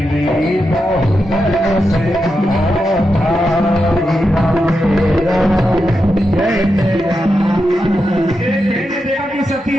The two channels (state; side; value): normal; both; correlation 0.87